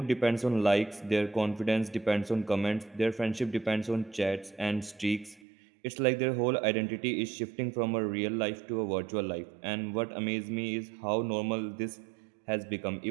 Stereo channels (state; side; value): drops out; left; at 5.4 s